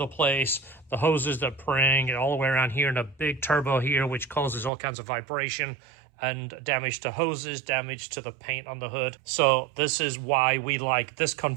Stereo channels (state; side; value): drops out; left; at 4.7 s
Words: place, the hoses that pring and all the way around here, and a big turbo here, which causes all kinds of vibration and damage to hoses, damage to the paint on the hood. So this is why we like this